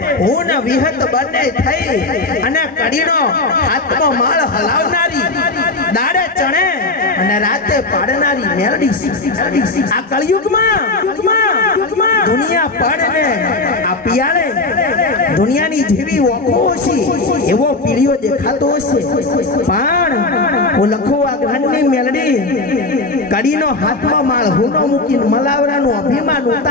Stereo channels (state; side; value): quieter; right; 3.3 dB